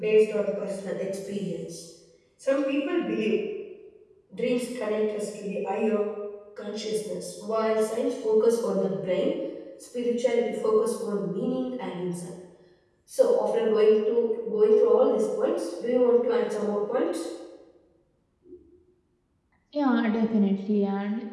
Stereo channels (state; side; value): identical; both; correlation 1.00